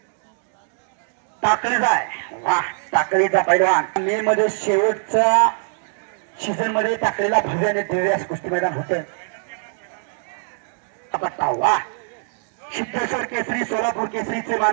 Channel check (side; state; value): left; silent; digital silence